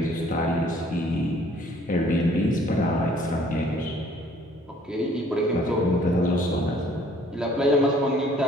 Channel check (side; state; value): both; normal; correlation 0.58